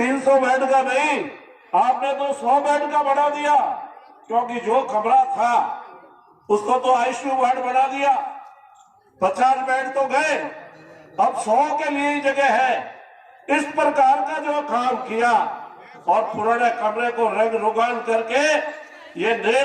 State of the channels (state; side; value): identical; both; correlation 1.00